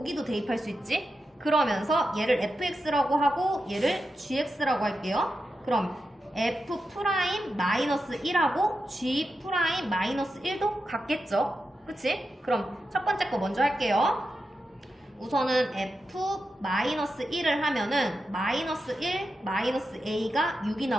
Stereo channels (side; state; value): both; normal; correlation 0.88